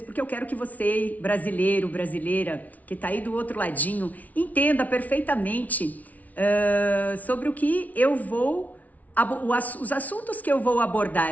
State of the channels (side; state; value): right; late; 0.073 ms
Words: porque eu quero que você, brasileiro, brasileira, que está aí do outro ladinho, entenda perfeitamente sobre o que eu vou, os assuntos que eu vou